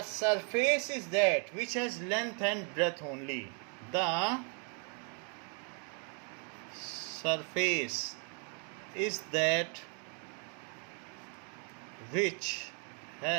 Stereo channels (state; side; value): quieter; left; 39.4 dB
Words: surface is that which has length and breadth only. The surface is that which